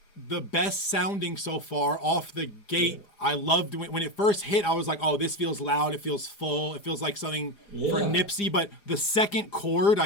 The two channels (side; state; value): right; late; 4.9 ms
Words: the best sounding so far off the gate. Yeah. I loved when it first hit. I was like, oh, this feels loud. It feels full. It feels like something for Nipsey. But the second chord